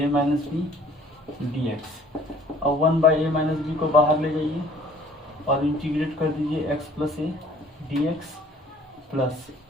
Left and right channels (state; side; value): normal; both; correlation 0.54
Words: minus b d x. और 1 बाई ए माइनस बी को बाहर ले जाइए और इंटीग्रेट कर दीजिए x plus a d x plus